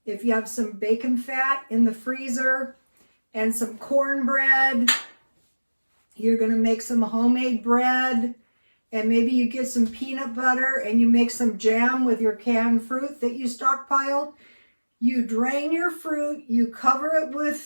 If you have some bacon fat in the freezer and some cornbread, you're going to make some homemade bread, and maybe you get some peanut butter and you make some jam with your canned fruit that you stockpiled. You drain your fruit, you cover it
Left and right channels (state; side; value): inverted; both; correlation -1.00